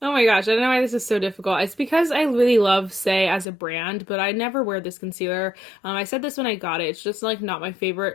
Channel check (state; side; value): drops out; right; at 3.5 s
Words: Oh my gosh, I don't know why this is so difficult. It's because I really love Say as a brand, but I never wear this concealer. I said this when I got it. It's just like not my